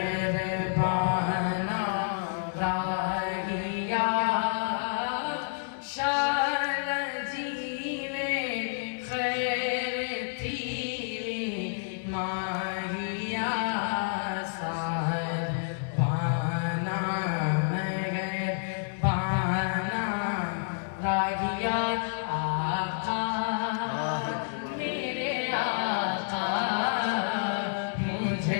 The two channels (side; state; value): right; silent; digital silence